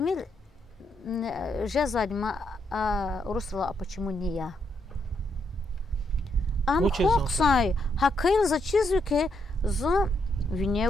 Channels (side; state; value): both; normal; correlation 0.78